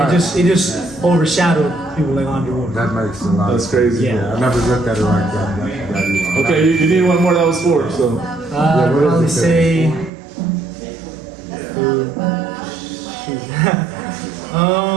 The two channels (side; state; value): left; drops out; at 10.1 s